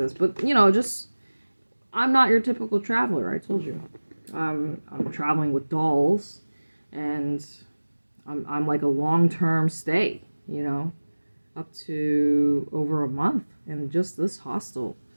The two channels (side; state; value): both; inverted; correlation -1.00